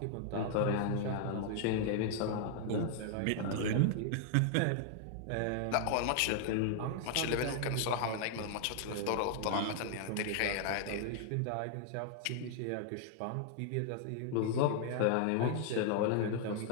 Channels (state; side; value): different; both; correlation 0.00